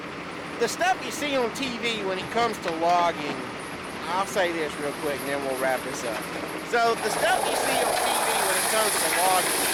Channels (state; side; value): identical; both; correlation 1.00